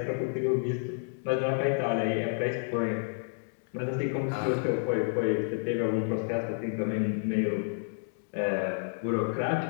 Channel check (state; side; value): silent; right; digital silence